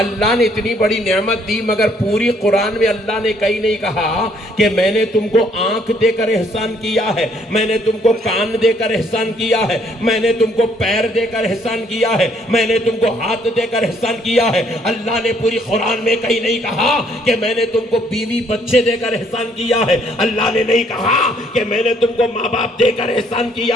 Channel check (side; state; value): both; normal; correlation 0.66